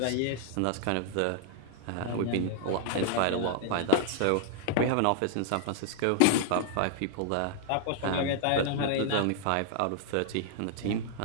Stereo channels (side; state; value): both; different; correlation 0.00